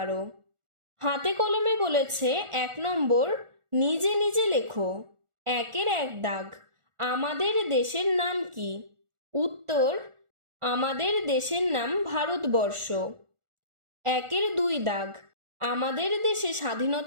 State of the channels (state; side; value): late; left; 1.4 ms